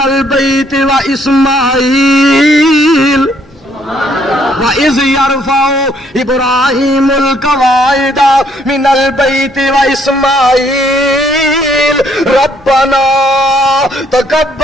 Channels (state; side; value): normal; both; correlation 0.67